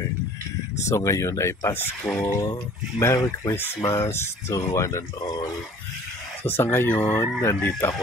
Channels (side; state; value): both; normal; correlation 0.50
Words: So ngayon ay Pasko. Merry Christmas to one and all. So sa ngayon, nandito